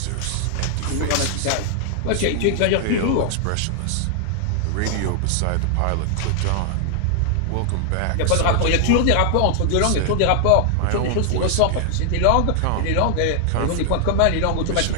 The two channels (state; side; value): different; both; correlation 0.00